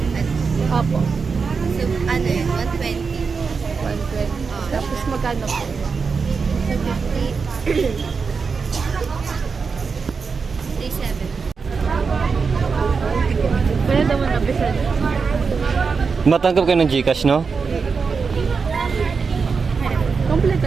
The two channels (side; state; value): left; quieter; 5.2 dB